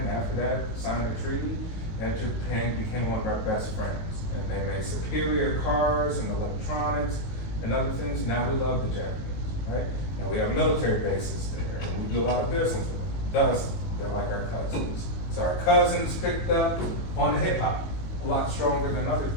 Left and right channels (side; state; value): right; late; 19 ms